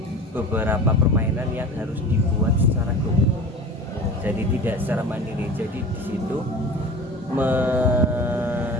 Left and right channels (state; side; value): normal; both; correlation 0.36